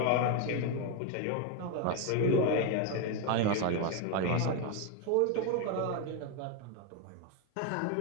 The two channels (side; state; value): both; different; correlation 0.02